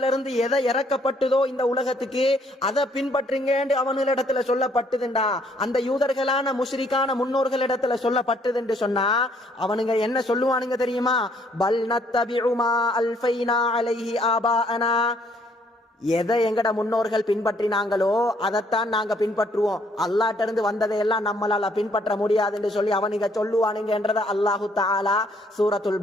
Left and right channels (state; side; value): normal; both; correlation 0.65